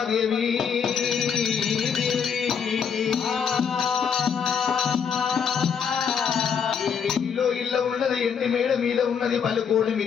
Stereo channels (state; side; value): quieter; right; 6.9 dB